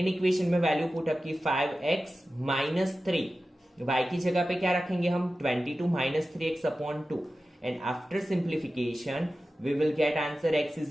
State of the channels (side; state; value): both; normal; correlation 0.94